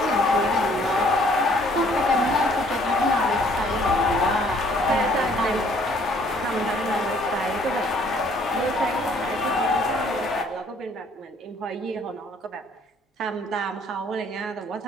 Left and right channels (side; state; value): both; normal; correlation 0.61